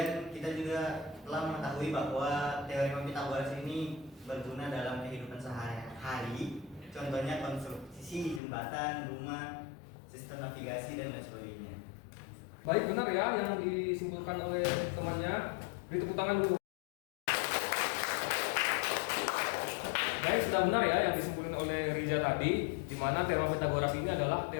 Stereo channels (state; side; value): drops out; right; at 8.4 s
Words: kita juga telah mengetahui bahwa teorema Pitagoras ini berguna dalam kehidupan sehari-hari. Contohnya konstruksi jembatan, rumah, sistem navigasi dan lain sebagainya. Baik, benar ya yang disimpulkan oleh temannya. Beri tepuk tangan dulu. Baik, sudah benar ya yang disimpulkan oleh Riza tadi, di mana teorema Pitagoras ini adalah